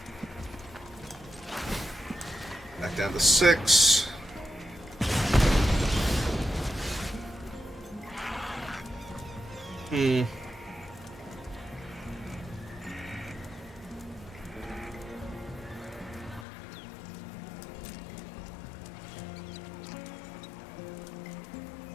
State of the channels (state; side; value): drops out; right; at 16.4 s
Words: Back down to 6.